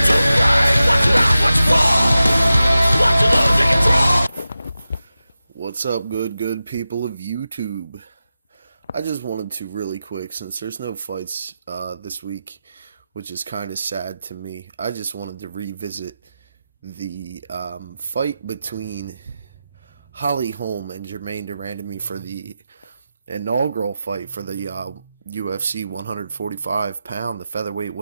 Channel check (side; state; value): both; inverted; correlation -0.93